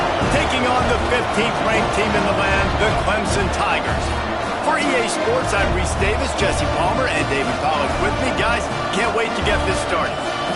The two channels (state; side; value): identical; both; correlation 1.00